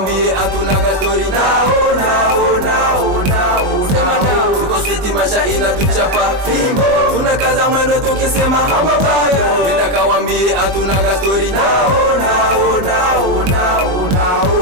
atunaga story. Sema no. Tuko switi masha inatuchapa, fimbo. Tunakaza mwendo tukisema mambo bado. Nenda kawambie atunaga story.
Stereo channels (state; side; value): late; left; 21 ms